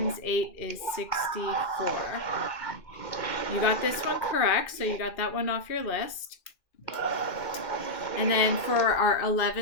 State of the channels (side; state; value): right; late; 2.4 ms